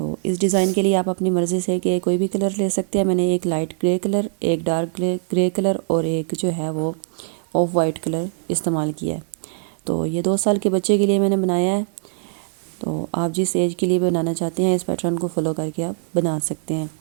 इस डिज़ाइन के लिए आप अपनी मर्ज़ी से कि कोई भी कलर ले सकते हैं। मैंने एक लाइट ग्रे कलर, एक डार्क ग्रे कलर और एक जो है वो ऑफ वाइट कलर इस्तेमाल किया है। तो ये 2 साल के बच्चे के लिए मैंने बनाया है। तो आप जिस एज के लिए बनाना चाहते हैं इस पैटर्न को फॉलो करके आप बना सकते हैं।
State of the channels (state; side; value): silent; left; digital silence